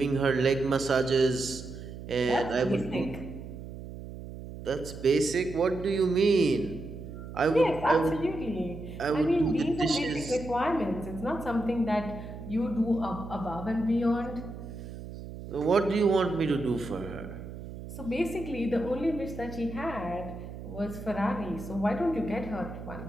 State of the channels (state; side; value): noise; right; hum, 11 dB below the sound